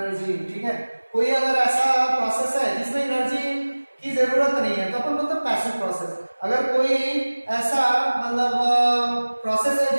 ठीक है। कोई अगर ऐसा प्रोसेस है जिसमें एनर्जी की जरूरत नहीं है तो अपन बोलते हैं पैसिव प्रोसेस। अगर कोई ऐसा मतलब प्रोसेस है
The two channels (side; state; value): both; inverted; correlation -1.00